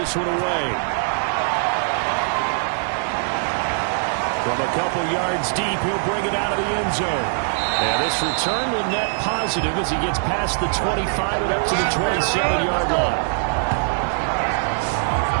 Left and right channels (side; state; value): left; silent; digital silence